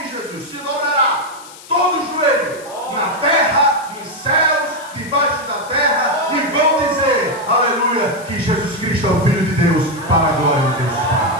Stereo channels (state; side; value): noise; left; hiss, 19 dB below the sound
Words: de Jesus, se dobrará todo joelho, na terra, nos céus, debaixo da terra, e vão dizer, aleluia, que Jesus Cristo é o Filho de Deus, para a glória de Deus